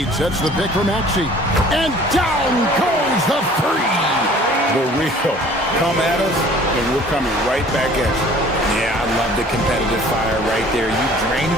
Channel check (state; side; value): normal; both; correlation 0.51